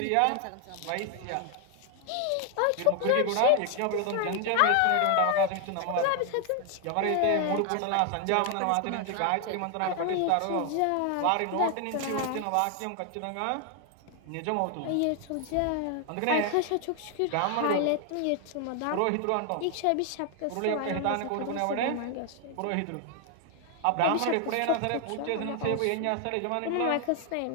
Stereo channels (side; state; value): both; different; correlation 0.00